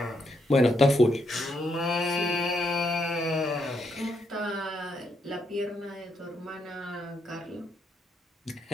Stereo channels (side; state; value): both; normal; correlation 0.77